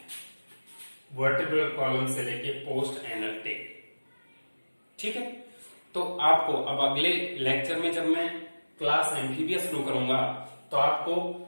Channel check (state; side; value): inverted; both; correlation -1.00